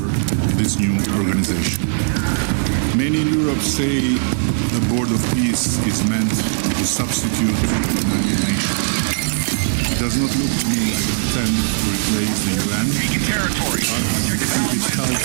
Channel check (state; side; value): silent; left; digital silence